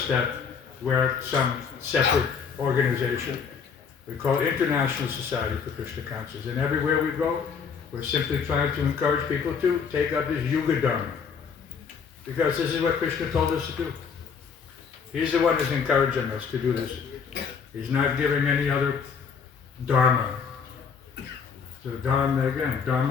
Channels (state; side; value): quieter; right; 6.3 dB